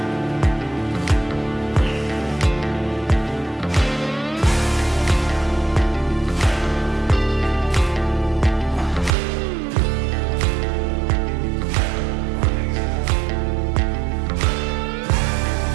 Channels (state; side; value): drops out; left; at 9.1 s